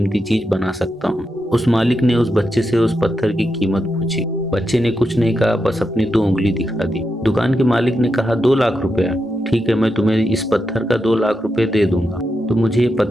चीज़ बना सकता हूँ। उस मालिक ने उस बच्चे से उस पत्थर की कीमत पूछी। बच्चे ने कुछ नहीं कहा, बस अपनी 2 उंगली दिखा दी। दुकान के मालिक ने कहा 2 लाख रुपया, ठीक है मैं तुम्हें इस पत्थर का 2 लाख रुपये दे दूंगा, तो मुझे ये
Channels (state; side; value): normal; both; correlation 0.86